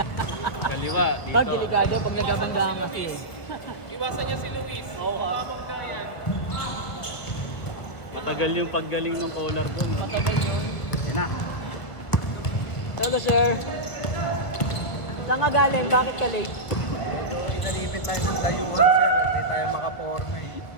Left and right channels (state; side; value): late; right; 1.6 ms